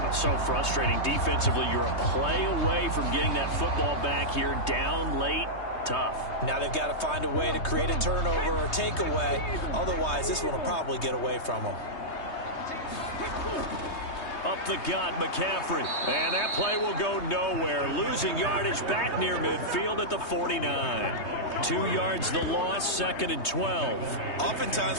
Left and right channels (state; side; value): late; right; 3.2 ms